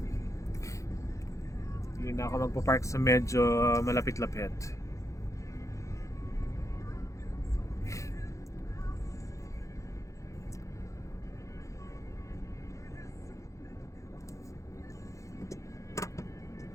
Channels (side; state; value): right; late; 0.15 ms